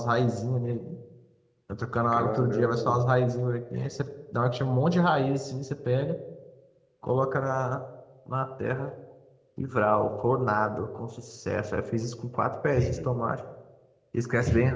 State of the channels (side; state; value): both; identical; correlation 1.00